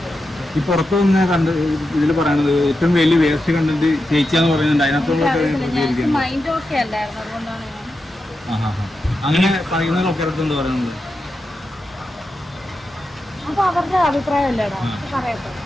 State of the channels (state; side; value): normal; both; correlation 0.88